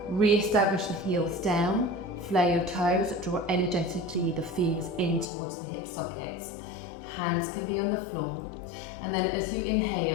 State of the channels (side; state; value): right; drops out; at 5.2 s